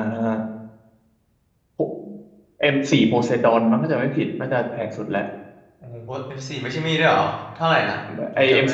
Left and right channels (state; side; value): identical; both; correlation 1.00